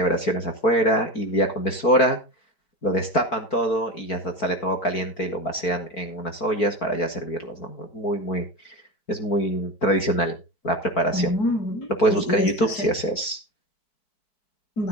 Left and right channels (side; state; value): right; late; 4.5 ms